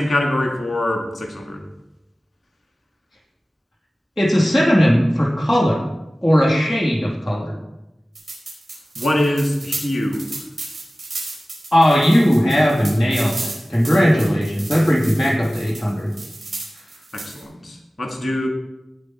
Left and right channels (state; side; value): normal; both; correlation 0.97